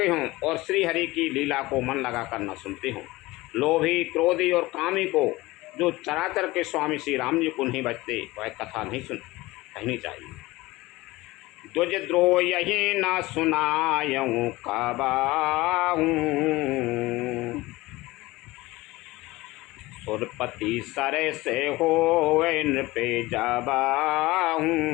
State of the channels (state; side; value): quieter; right; 19.9 dB